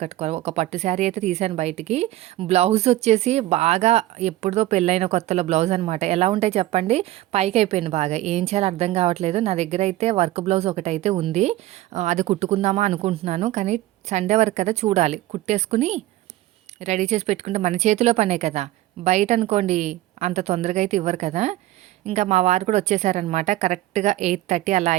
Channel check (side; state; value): left; quieter; 15.8 dB